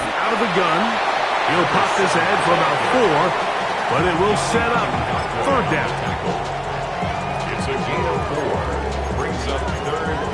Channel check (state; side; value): identical; both; correlation 1.00